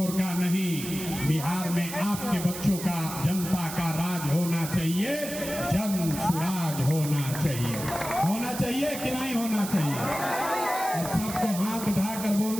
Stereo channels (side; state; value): right; noise; hiss, 9 dB below the sound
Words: का नहीं, बिहार में आपके बच्चों का, जनता का राज होना चाहिए, जनसुराज होना चाहिए। होना चाहिए कि नहीं होना चाहिए? अब सबको हाथ उठाकर